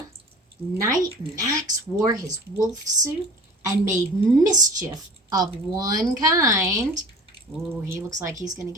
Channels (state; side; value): normal; both; correlation 0.41